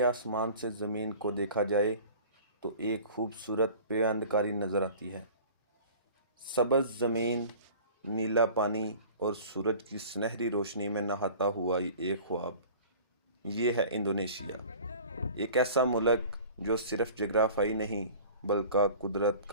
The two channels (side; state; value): both; inverted; correlation -0.44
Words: آسمان سے زمین کو دیکھا جائے تو ایک خوبصورت پیوندکاری نظر آتی ہے۔ سبز زمین، نیلا پانی اور سورج کی سنہری روشنی میں نہاتا ہوا ایک خواب۔ یہ ہے انڈونیشیا، ایک ایسا ملک جو صرف جغرافیائی نہیں بلکہ قدرت